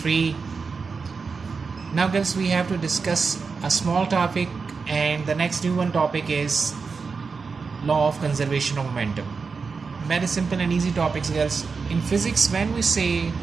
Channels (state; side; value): quieter; left; 4.9 dB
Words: Now girls, we have to discuss a small topic, and the next new one topic is law of conservation of momentum. Very simple and easy topics, girls. In physics, when we say